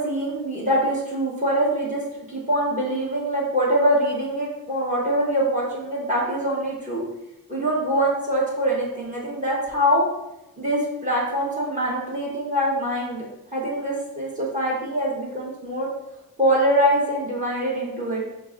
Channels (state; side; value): normal; both; correlation -0.17